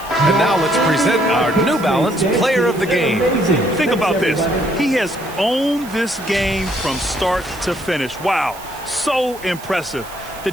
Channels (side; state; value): right; noise; hiss, 18 dB below the sound